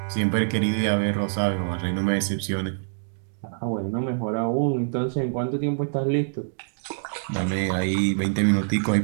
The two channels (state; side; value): silent; left; digital silence